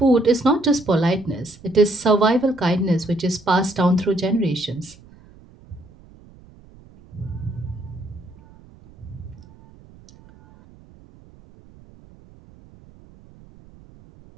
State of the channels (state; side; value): noise; right; rumble, 24 dB below the sound